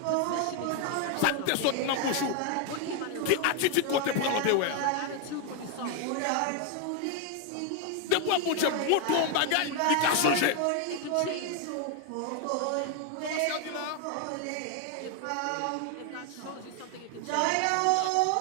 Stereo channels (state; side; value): different; both; correlation 0.01